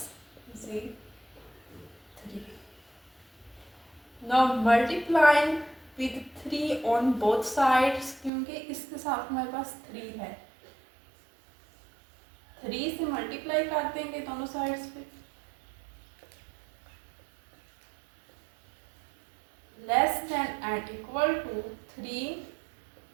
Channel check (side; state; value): left; drops out; at 8.3 s